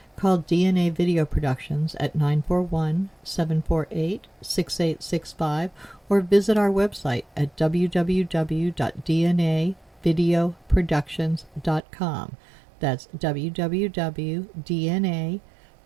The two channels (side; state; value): left; drops out; at 11.8 s